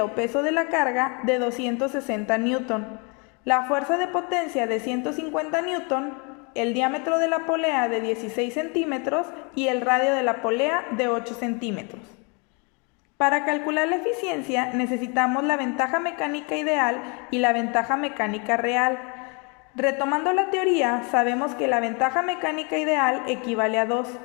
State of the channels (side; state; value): right; quieter; 33.5 dB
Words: o peso de la carga de 260 Newton, la fuerza de potencia de 150 Newton, el diámetro de la polea de 16 centímetros y el radio de la polea de 8 centímetros. Para calcular la eficiencia necesitamos la ventaja mecánica ideal y la ventaja mecánica real. Retomando la teoría, sabemos que la ventaja mecánica ideal equivale a 2,